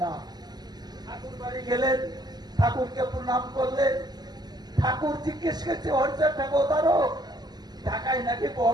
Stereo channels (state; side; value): late; left; 0.20 ms